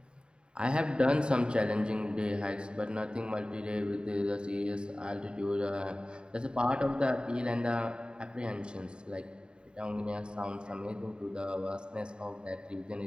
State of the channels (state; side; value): late; left; 0.051 ms